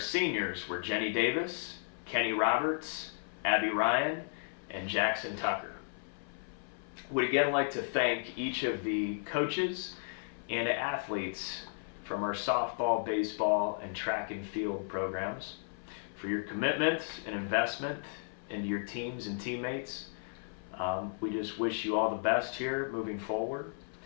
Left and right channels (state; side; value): silent; right; 55 dB below the other